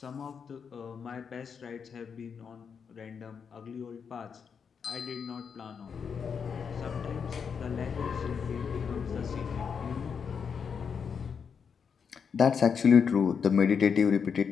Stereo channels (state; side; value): quieter; right; 6.5 dB